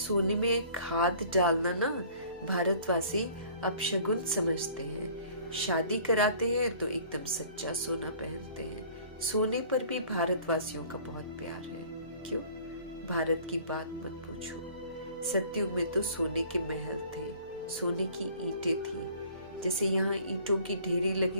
में खाद डालना ना भारतवासी अपशगुन समझते हैं। शादी कराते हैं तो एकदम सच्चा सोना पहनते हैं। सोने पर भी भारतवासियों का बहुत प्यार है। क्यों? भारत की बात मत पूछो। सतयुग में तो सोने के महल थे, सोने की ईंटें थी। जैसे यहाँ ईंटों की ढेरी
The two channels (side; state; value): both; inverted; correlation -0.51